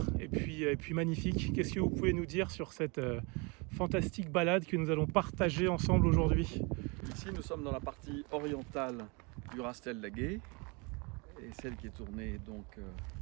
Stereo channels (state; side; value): quieter; left; 29.9 dB